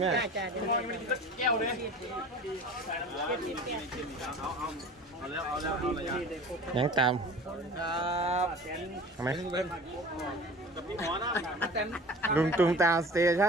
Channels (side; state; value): both; normal; correlation 0.41